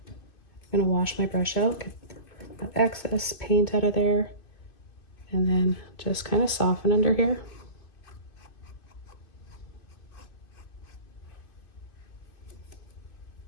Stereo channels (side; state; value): right; late; 2.4 ms